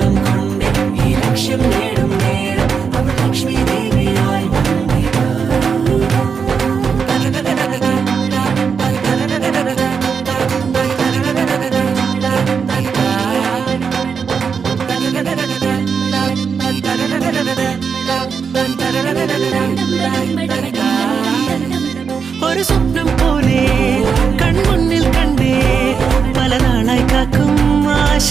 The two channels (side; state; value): left; quieter; 6.1 dB